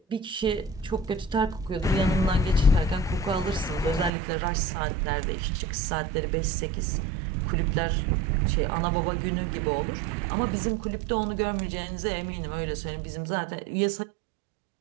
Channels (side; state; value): left; drops out; at 4.1 s